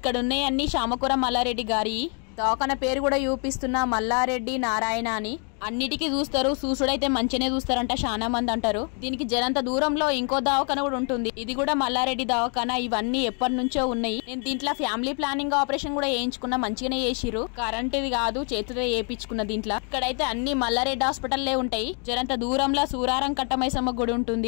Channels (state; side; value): quieter; right; 39.9 dB